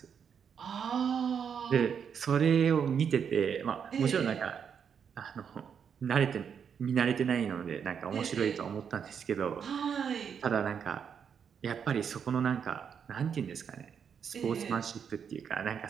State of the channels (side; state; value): left; quieter; 7.3 dB